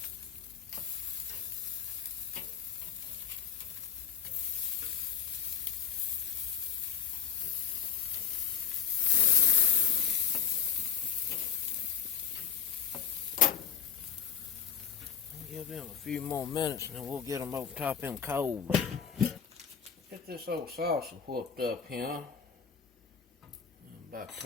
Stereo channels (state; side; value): quieter; right; 7.8 dB